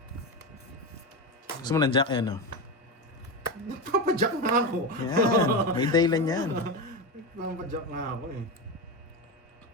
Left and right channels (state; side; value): normal; both; correlation 0.17